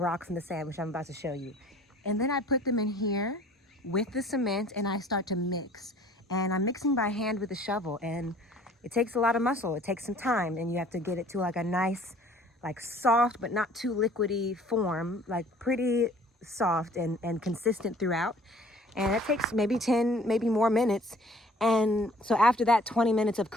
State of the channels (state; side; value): normal; both; correlation 0.53